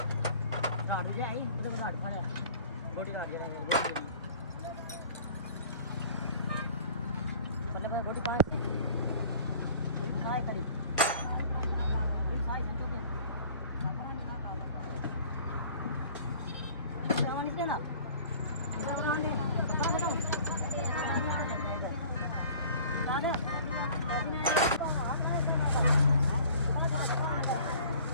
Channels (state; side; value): inverted; both; correlation -0.49